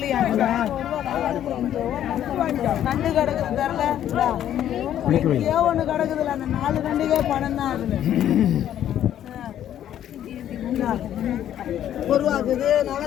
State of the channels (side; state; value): right; quieter; 11.0 dB